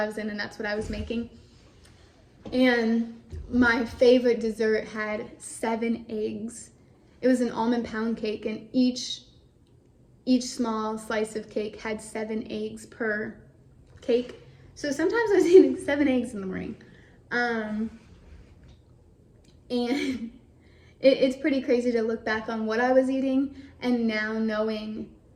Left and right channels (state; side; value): identical; both; correlation 1.00